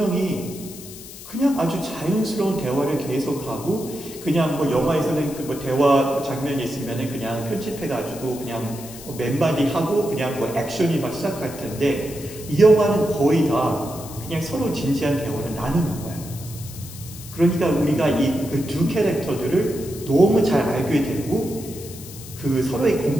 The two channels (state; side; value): noise; left; hiss, 15 dB below the sound